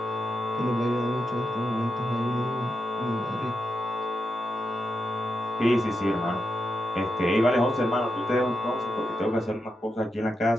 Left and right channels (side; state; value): both; normal; correlation 0.86